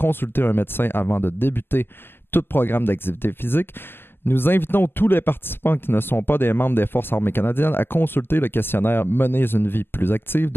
un médecin avant de débuter tout programme d'activité physique, nous invitons tous les participants qui ne sont pas des membres des Forces armées canadiennes à consulter le questionnaire Menez une vie plus active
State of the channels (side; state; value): right; late; 0.11 ms